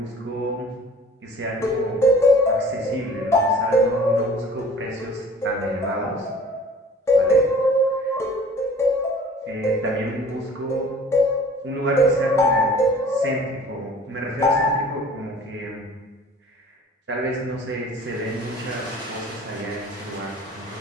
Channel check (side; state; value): both; normal; correlation 0.48